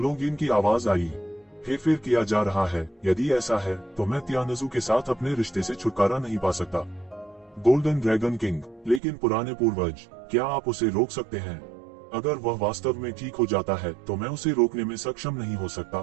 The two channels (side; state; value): left; drops out; at 9.0 s